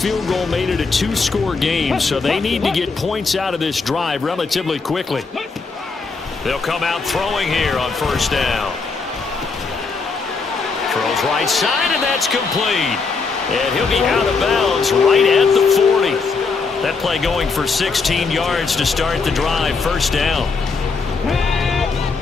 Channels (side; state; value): right; quieter; 4.5 dB